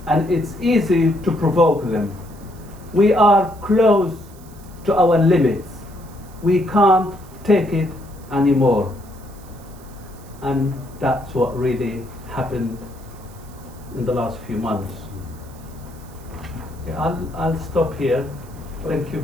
and it's easy to provoke them. We are close to our limits. We can't take it anymore. And that's what really happened in the last few months. Okay, I'll stop here. Thank you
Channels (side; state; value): right; noise; hiss, 24 dB below the sound